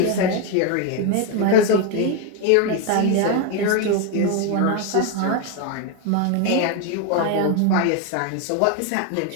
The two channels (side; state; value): both; different; correlation 0.01